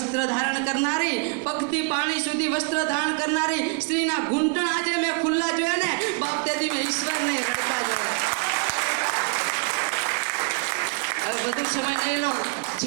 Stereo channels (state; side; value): quieter; left; 35.8 dB